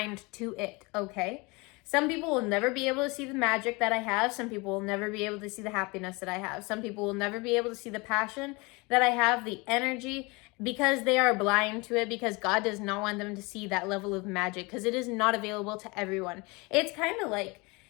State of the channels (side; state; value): right; quieter; 26.4 dB